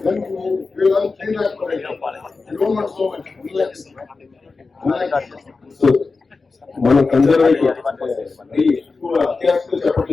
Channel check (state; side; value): quieter; right; 4.1 dB